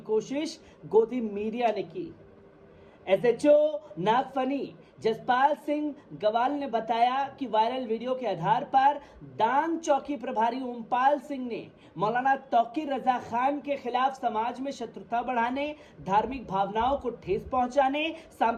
कोशिश गोदी मीडिया ने की। एसएचओ नागफनी जसपाल सिंह गवाल ने बताया कि वायरल वीडियो के आधार पर दांग चौकी प्रभारी ओमपाल सिंह ने मौलाना तौकीर रजा खान के खिलाफ समाज में शत्रुता बढ़ाने, धार्मिक भावनाओं को ठेस पहुंचाने,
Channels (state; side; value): identical; both; correlation 1.00